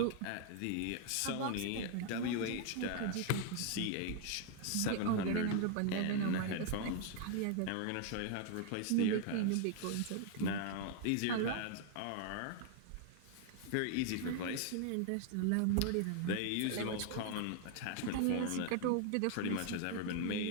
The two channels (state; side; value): different; both; correlation 0.00